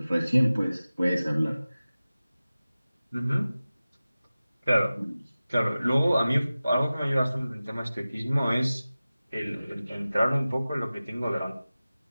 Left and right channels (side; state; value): both; inverted; correlation -0.97